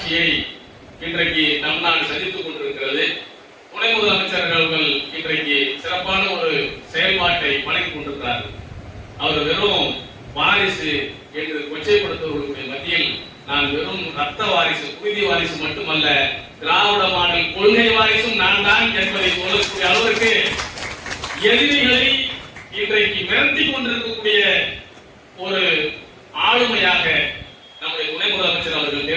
இன்றைக்கு தமிழ்நாடு சந்தித்துக் கொண்டிருக்கிறது. துணை முதலமைச்சர்கள் இன்றைக்கு சிறப்பான ஒரு செயல்பாட்டை வழங்கிக் கொண்டிருக்கிறார்கள். அவர் வெறும் வாரிசு என்று கொச்சைப்படுத்துவதற்குரிய மத்தியில் நான் வெறும் ரத்த வாரிசு, குருதி வாரிசு மட்டுமல்ல, திராவிட மாடல் கொள்கை வாரிசும் நான் தான் என்பதை சொல்லக்கூடிய அளவிற்கு எதிரிகளை இன்றைக்கு மிரட்டி கொண்டிருக்கக்கூடிய ஒரு ஆளுமையாக நம்முடைய துணை முதலமைச்சர் அவர்கள்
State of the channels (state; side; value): identical; both; correlation 1.00